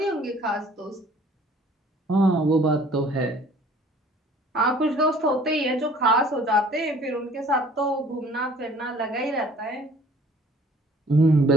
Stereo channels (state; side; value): normal; both; correlation 0.53